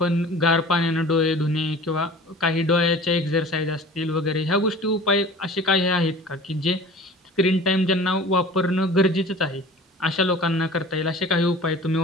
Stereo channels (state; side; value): normal; both; correlation 0.43